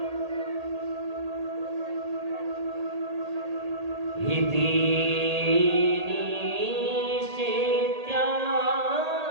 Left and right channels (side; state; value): left; late; 1.8 ms